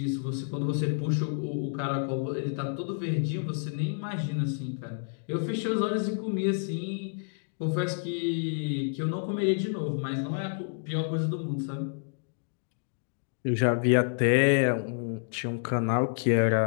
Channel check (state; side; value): silent; right; digital silence